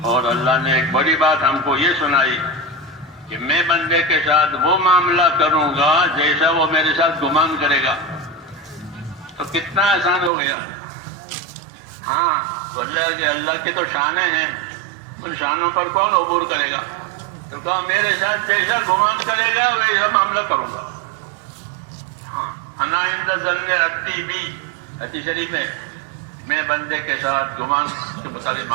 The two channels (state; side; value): drops out; left; at 10.3 s